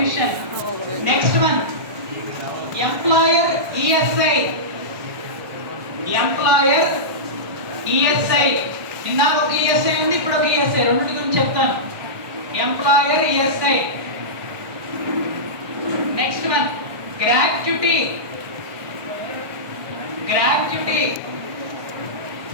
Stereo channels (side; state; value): left; late; 1.2 ms